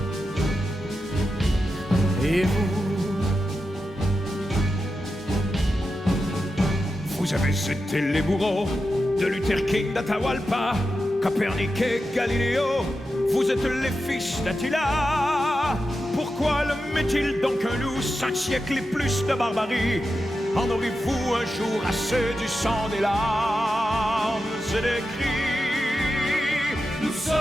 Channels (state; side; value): normal; both; correlation 0.90